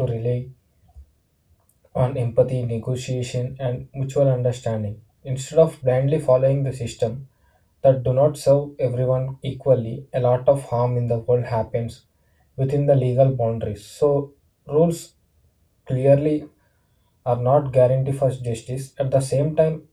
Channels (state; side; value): identical; both; correlation 1.00